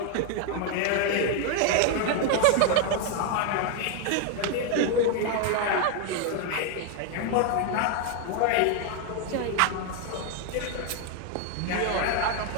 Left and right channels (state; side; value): different; both; correlation 0.01